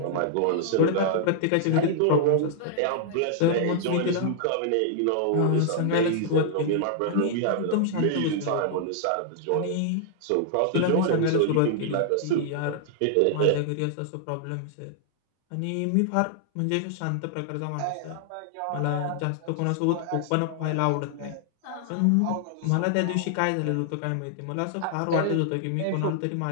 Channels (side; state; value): both; different; correlation -0.01